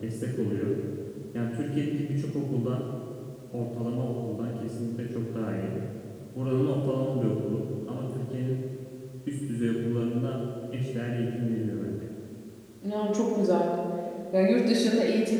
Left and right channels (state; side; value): identical; both; correlation 1.00